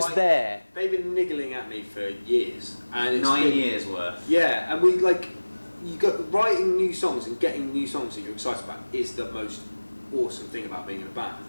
there? They've been niggling at me for years, and it's 9 years worth. Yeah, and you got writing new songs and getting new songs that you're excited about is the most awesome thing about being in a band,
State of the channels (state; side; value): inverted; both; correlation -1.00